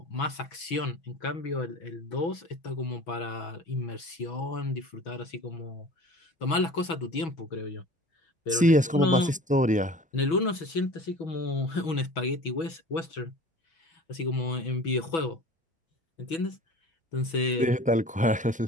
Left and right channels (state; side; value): normal; both; correlation 0.42